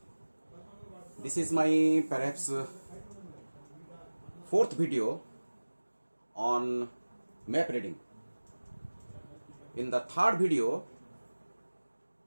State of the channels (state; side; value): inverted; both; correlation -1.00